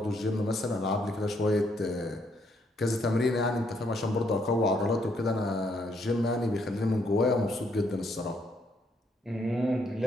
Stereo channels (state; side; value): normal; both; correlation 0.72